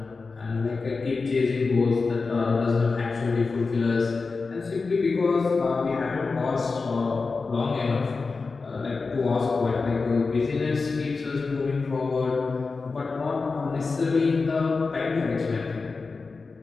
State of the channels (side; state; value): right; quieter; 4.2 dB